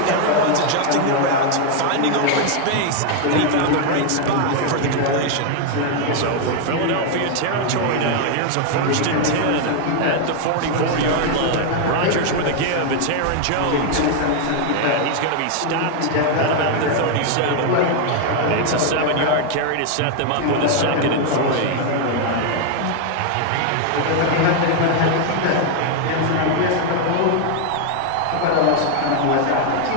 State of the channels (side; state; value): both; different; correlation 0.00